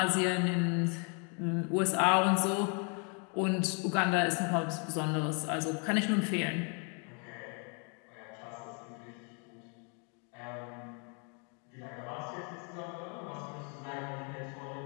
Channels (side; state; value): right; quieter; 37.3 dB